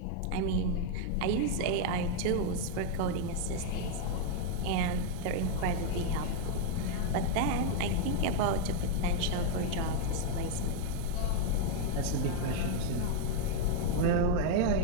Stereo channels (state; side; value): different; both; correlation 0.00